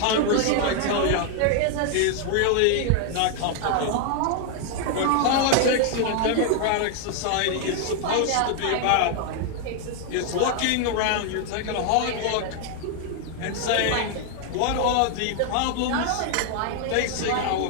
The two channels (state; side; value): different; both; correlation 0.00